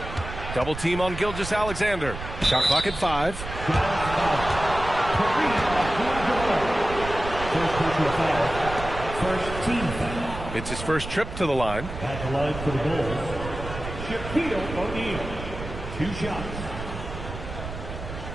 Double team on Gilgeous-Alexander. Shot clock at 5. First team foul. It's his first trip to the line. At the line for the Bulls, Shaquille O'Neal. 2 shots.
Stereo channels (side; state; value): right; noise; rumble, 9 dB below the sound